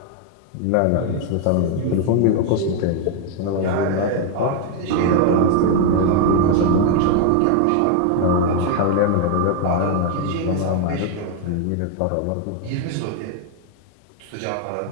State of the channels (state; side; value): different; both; correlation 0.01